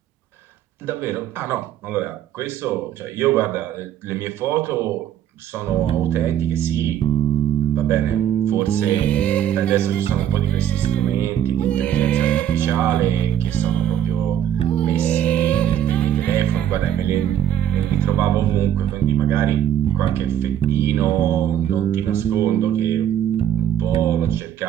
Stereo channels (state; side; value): quieter; left; 10.4 dB